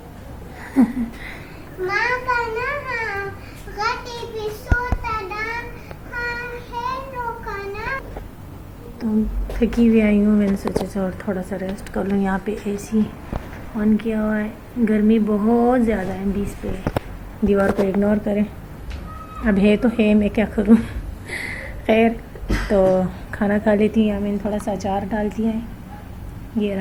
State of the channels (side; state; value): both; identical; correlation 1.00